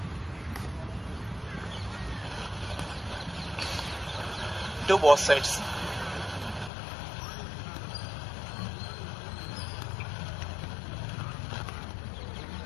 Do both sides.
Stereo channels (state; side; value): drops out; right; at 6.7 s